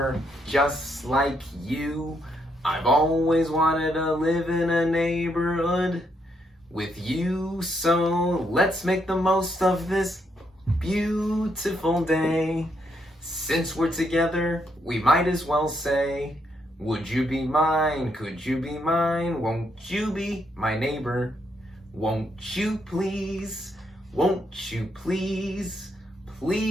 just like you. I've always wanted to live in a neighborhood with you. So let's make the most of this beautiful day. Since we're together, we might as well say, would you be mine? Could you be mine? Won't you be my neighbor? Won't you please? Won't you please?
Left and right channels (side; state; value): both; normal; correlation 0.76